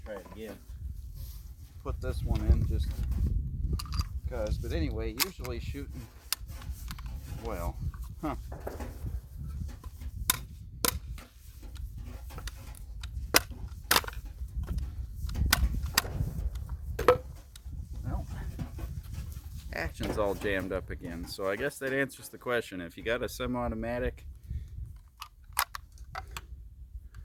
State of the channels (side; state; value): both; identical; correlation 1.00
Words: try it again. Put this one in just because. But anyway, usually shooting well. Huh. Well, action's all jammed up again. So I guess that answers the question. If you got a semi-automatic,